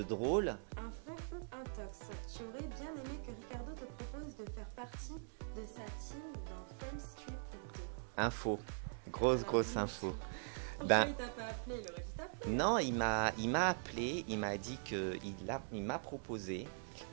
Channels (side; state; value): left; silent; digital silence